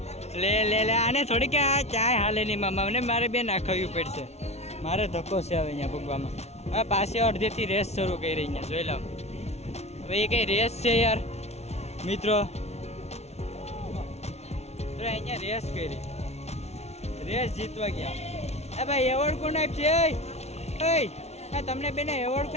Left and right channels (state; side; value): late; right; 0.31 ms